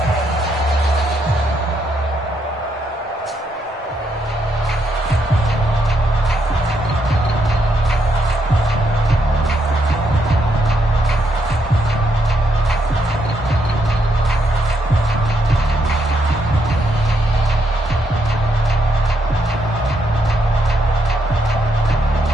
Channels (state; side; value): normal; both; correlation 0.77